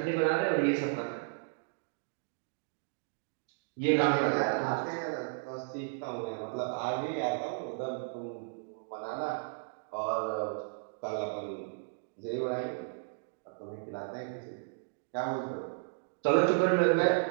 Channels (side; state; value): left; silent; digital silence